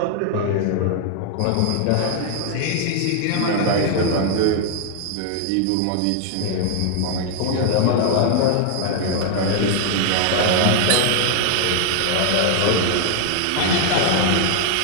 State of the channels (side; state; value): both; different; correlation 0.00